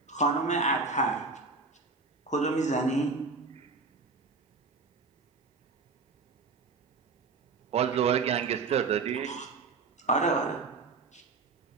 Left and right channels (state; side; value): quieter; left; 4.2 dB